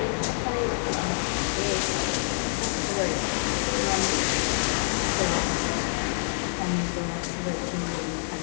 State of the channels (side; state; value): right; silent; digital silence